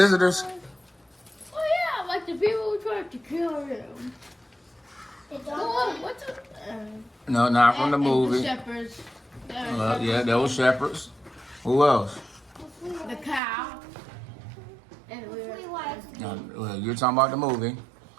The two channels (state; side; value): drops out; left; at 13.4 s